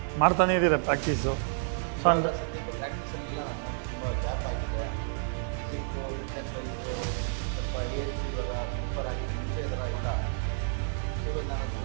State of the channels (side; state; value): left; silent; digital silence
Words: ಮಾಡ್ತಾನೇ ಇದ್ದೀರಾ ಪ್ರಾಕ್ಟೀಸು ಬಟ್ ಇವಾಗ ಸದ್ಯಕ್ಕೆ ಪ್ರಾಕ್ಟೀಸಲ್ಲಿ ಇಲ್ಲ ನಾನು ತುಂಬ ಗ್ಯಾಪ್ ಆಗಿದೆ ಫಿಸಿಕ್ಕು ಫಿಟ್ನೆಸ್ ವೈಸು ಸ್ವಲ್ಪ ಏಜ್ ಇವಾಗ ಪ್ರಿಫರ್ ಆಗಿದೆ ಮುಂಚೆ ಈ ಥರ ಇಲ್ಲ ಸೊ ಇವಾಗ ನಾನು